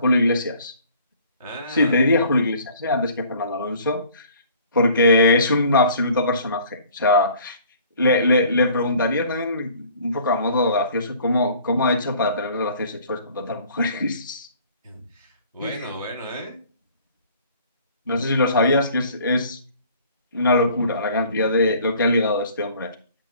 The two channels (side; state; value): both; inverted; correlation -0.53